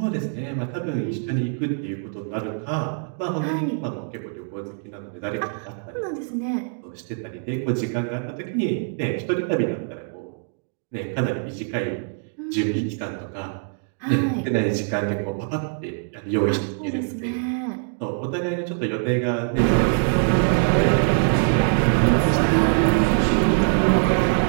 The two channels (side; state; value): left; silent; 63 dB below the other